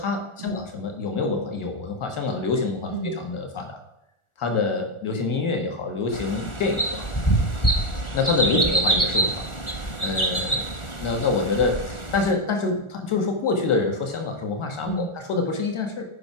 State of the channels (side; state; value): right; late; 1.4 ms